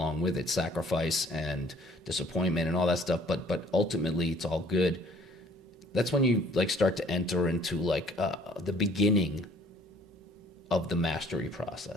with it, sacrifice and disappointment and all that stuff. But ultimately, it's all good. That's when you like start to enter into like the beginning of the mastery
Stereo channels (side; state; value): both; normal; correlation 0.57